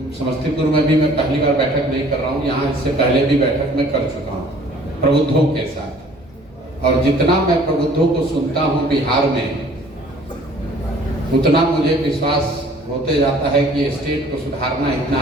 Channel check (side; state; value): both; normal; correlation 0.54